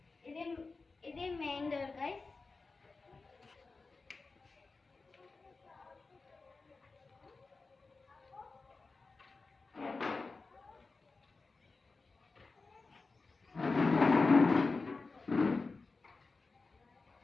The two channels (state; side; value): quieter; right; 4.0 dB